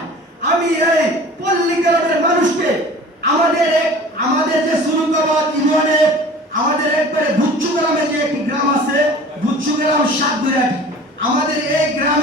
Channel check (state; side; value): normal; both; correlation 0.43